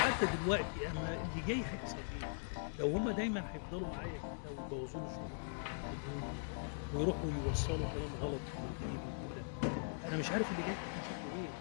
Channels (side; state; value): right; silent; 51 dB below the other